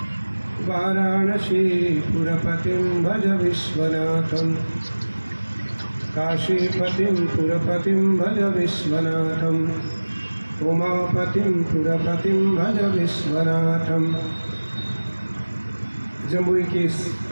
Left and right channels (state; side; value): inverted; both; correlation -1.00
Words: वाराणसीपुरपतिं भज विश्वनाथं काशीपतिं पुरपतिं भज विश्वनाथं उमापतिं पुरपतिं भज विश्वनाथं। जमुई की इस